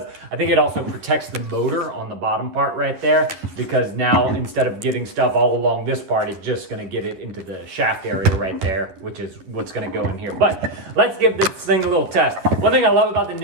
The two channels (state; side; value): late; left; 11 ms